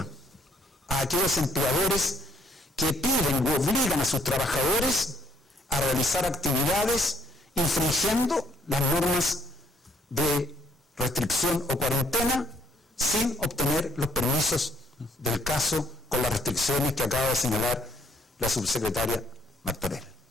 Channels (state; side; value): normal; both; correlation 0.66